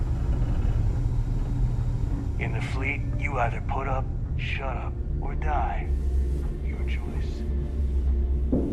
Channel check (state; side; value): identical; both; correlation 1.00